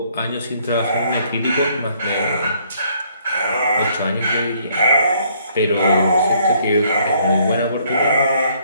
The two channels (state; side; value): inverted; both; correlation -0.65